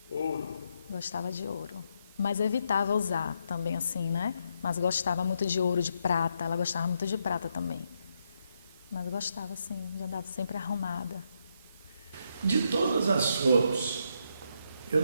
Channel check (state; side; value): inverted; both; correlation -0.78